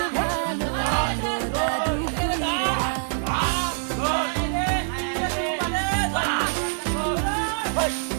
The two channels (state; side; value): silent; left; digital silence